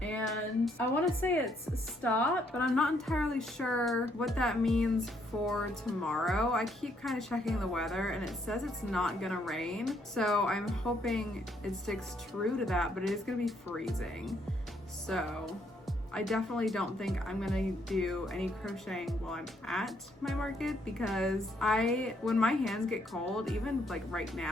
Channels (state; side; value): normal; both; correlation 0.71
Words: And I want to say it's stopped, but I'm not entirely sure what that means for tomorrow. I keep kind of checking the weather and it says it's not gonna rain. So I'm hoping it sticks true to that, but it is gonna be freezing. So I definitely don't think I'm gonna do any crocheting while I'm at my market, because when my hands get cold, even like right